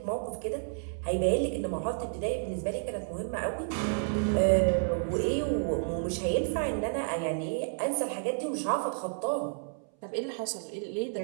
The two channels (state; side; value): silent; left; 57 dB below the other